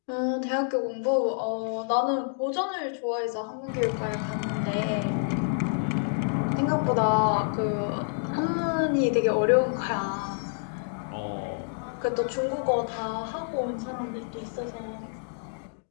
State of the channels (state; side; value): silent; right; digital silence